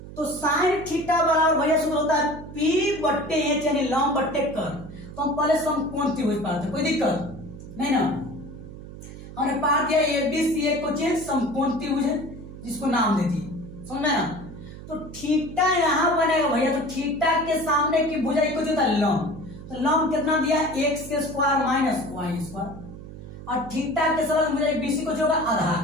तो साइन थीटा बराबर भैया सूत्र होता है P बट्टे एच, यानी लंब बट्टे कर्ण। तो हम पहले समकोण त्रिभुज पाते, कोई दिक्कत नहीं ना। हमने पाठ दिया ABC एक क्वेश्चन समकोण त्रिभुज है, जिसको नाम दे दिए, समझ में ना। तो थीटा यहाँ बनेगा भैया, तो थीटा के सामने की भुजा इक्वल होता है लंब। तो लंब कितना दिया एक्स के स्क्वायर माइनस वाई स्क्वायर, और थीटा के साथ भुजा BC को होगा आधार।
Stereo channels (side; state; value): right; noise; hum, 14 dB below the sound